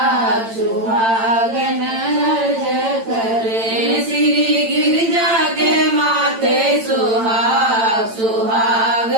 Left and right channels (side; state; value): left; late; 8.9 ms